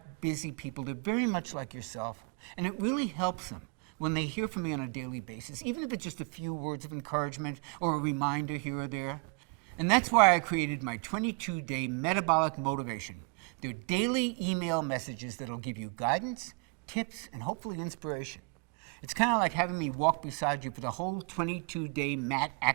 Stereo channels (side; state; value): left; quieter; 33.5 dB